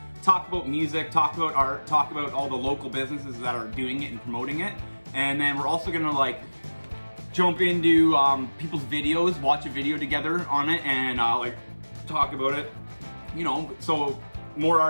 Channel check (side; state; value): both; inverted; correlation -1.00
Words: Talk about music, talk about art, talk about all the local businesses that are doing it and promoting it. And then we're also gonna like jump into people's videos, watch a video together on it, and like talk about it. You know, so more